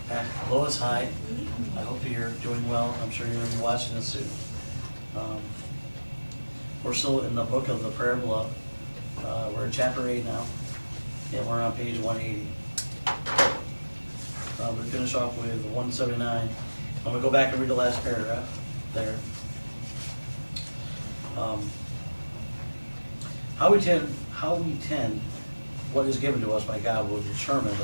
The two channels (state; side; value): inverted; both; correlation -1.00